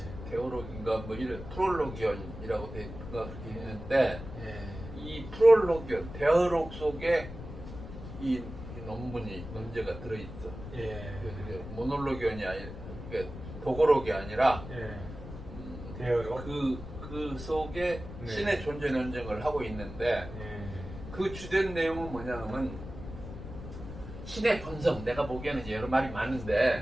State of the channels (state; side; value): noise; left; rumble, 11 dB below the sound